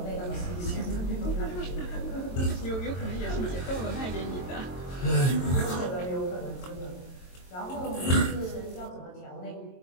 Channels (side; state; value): right; late; 22 ms